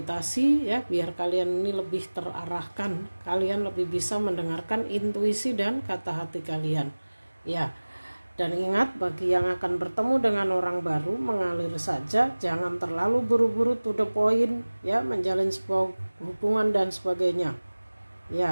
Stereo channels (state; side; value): inverted; both; correlation -1.00